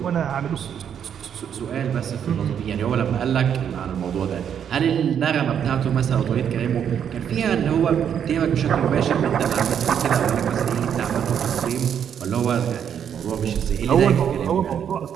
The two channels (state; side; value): quieter; left; 8.5 dB